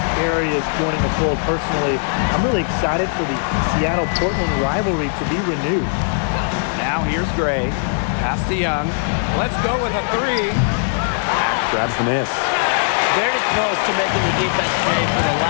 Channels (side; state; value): right; silent; 66 dB below the other